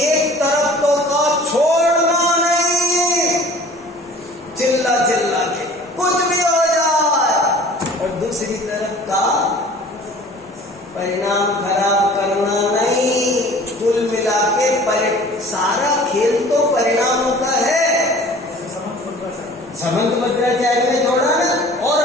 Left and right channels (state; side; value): normal; both; correlation 0.47